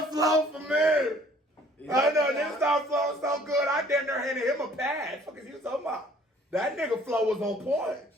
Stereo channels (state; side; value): normal; both; correlation 0.56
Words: flow for me. I know this song flow so good. I damn near handed him a pass. Fuck is you talking about? That nigga flow was on point.